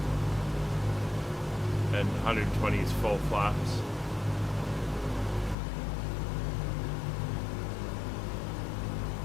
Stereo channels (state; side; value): drops out; right; at 5.6 s